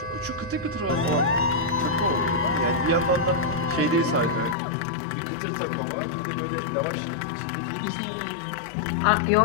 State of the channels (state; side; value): drops out; right; at 4.5 s